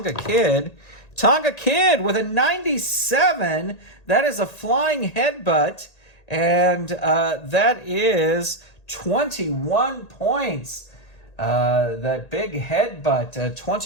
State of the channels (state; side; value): late; right; 1.8 ms